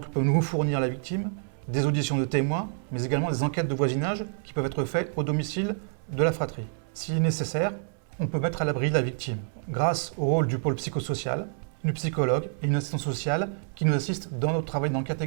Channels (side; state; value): left; silent; 60 dB below the other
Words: peut nous fournir la victime, des auditions de témoins, mais également des enquêtes de voisinage qui peuvent être faites au domicile de la fratrie. S'il est nécessaire, on peut mettre à l'abri la victime grâce au rôle du pôle psychosocial, une psychologue et une assistante sociale qui nous assistent dans notre travail d'enquête